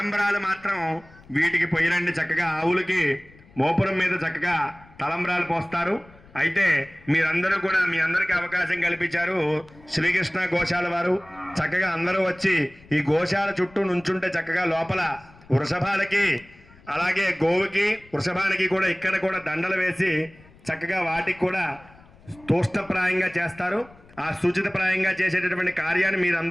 మాత్రం వీటికి పొయ్యిరండి. చక్కగా ఆవులకి మోపురం మీద చక్కగా తలంబ్రాలు పోస్తారు. అయితే మీరందరూ కూడా మీ అందరికీ అవకాశం కల్పించారు శ్రీకృష్ణ గోశాల వారు. చక్కగా అందరూ వచ్చి ఈ గోశాల చుట్టూ నుంచుంటే చక్కగా లోపల వృషభాలకి అలాగే గోవుకి వృషభానికి కూడా ఇక్కడ కూడా దండలు వేసి చక్కగా వాటికి కూడా తోష్టప్రాయంగా చేస్తారు. ఆ సూచితప్రాయంగా చేసేటటువంటి కార్యాన్ని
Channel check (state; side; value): noise; left; rumble, 25 dB below the sound